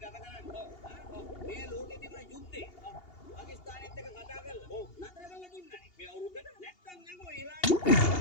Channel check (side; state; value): right; late; 2.8 ms